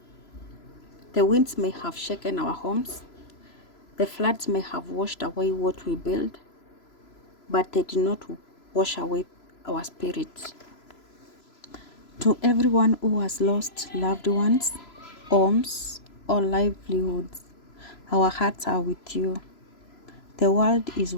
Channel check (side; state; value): right; late; 3.0 ms